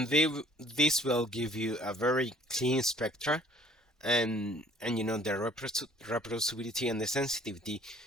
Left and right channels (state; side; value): normal; both; correlation 0.55